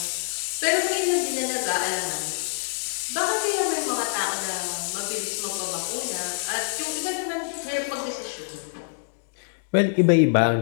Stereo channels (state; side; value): silent; right; digital silence